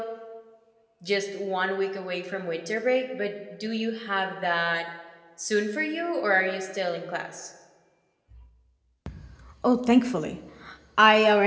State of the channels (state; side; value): identical; both; correlation 1.00